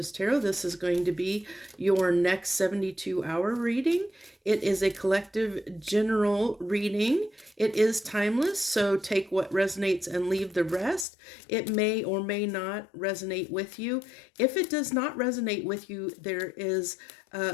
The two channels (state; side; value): drops out; right; at 11.1 s